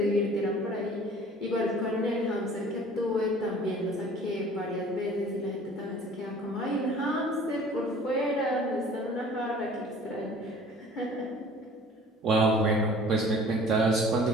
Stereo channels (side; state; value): both; normal; correlation 0.48